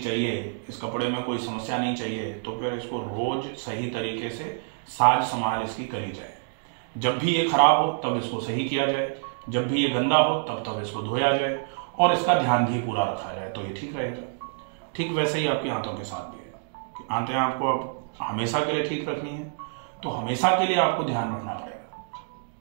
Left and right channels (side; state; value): left; silent; digital silence